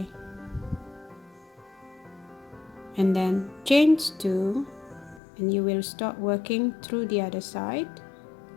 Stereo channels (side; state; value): right; drops out; at 5.2 s